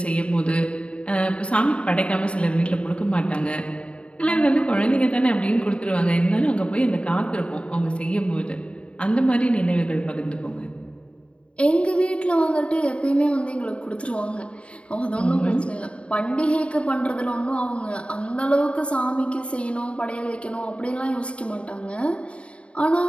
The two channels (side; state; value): right; late; 0.059 ms